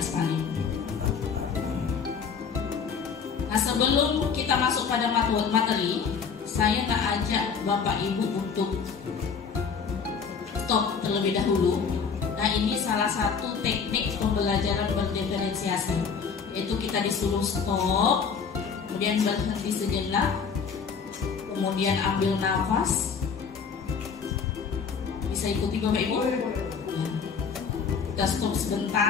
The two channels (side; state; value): right; quieter; 6.1 dB